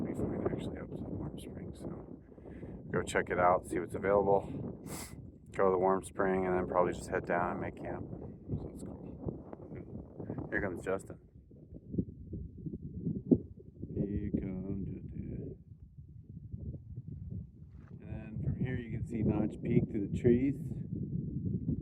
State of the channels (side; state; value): both; identical; correlation 1.00